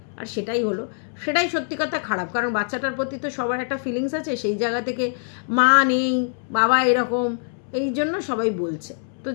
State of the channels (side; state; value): right; silent; 63 dB below the other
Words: আর সেটাই হলো, সেটাই সত্যি কথা খারাপ। কারণ বাচ্চাটার প্রতি তো সবার একটা ফিলিংস আছে, সেই জায়গা থেকে মা নেই, বাবা এরকম, এই জন্য সবাই বলছে। তো